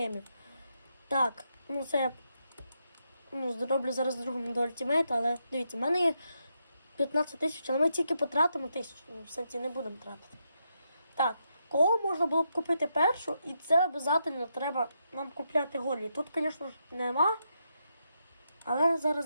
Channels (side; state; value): both; inverted; correlation -0.82